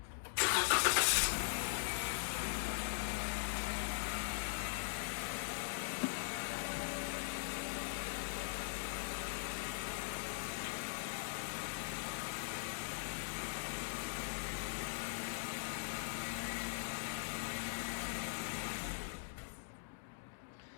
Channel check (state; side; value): silent; right; digital silence